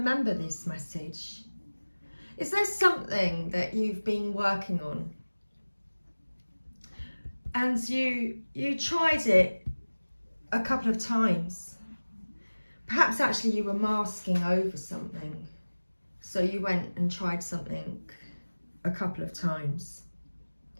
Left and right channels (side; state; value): both; inverted; correlation -1.00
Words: this message. Is there something that you've been working on? And you tried it a couple of times. Perhaps actually you were masking over something. So you went and tried something a couple of times.